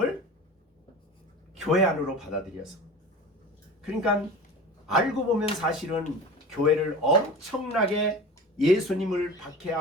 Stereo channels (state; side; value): normal; both; correlation 0.34